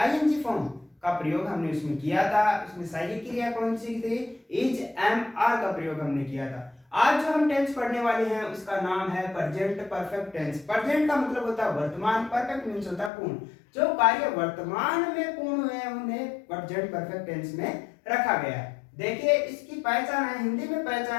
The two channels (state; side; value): drops out; right; at 13.1 s